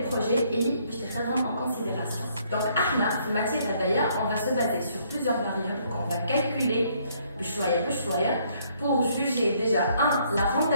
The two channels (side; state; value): both; inverted; correlation -0.67